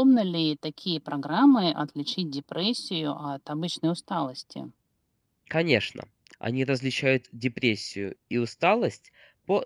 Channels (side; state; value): both; identical; correlation 1.00